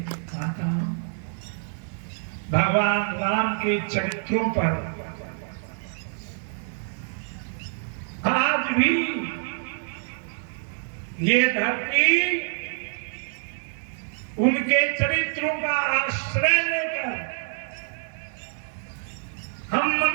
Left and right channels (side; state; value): left; silent; digital silence